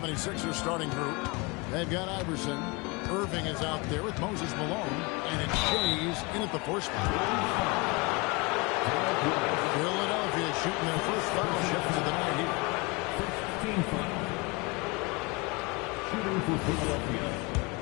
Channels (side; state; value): right; quieter; 27.0 dB